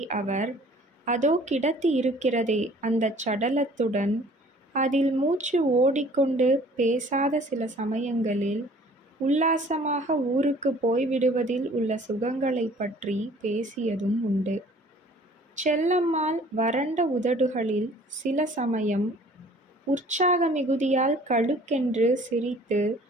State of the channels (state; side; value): normal; both; correlation 0.52